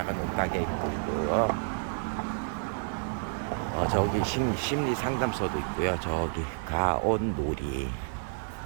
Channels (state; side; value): silent; left; digital silence